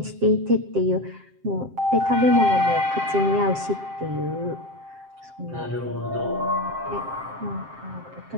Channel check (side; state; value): left; late; 7.6 ms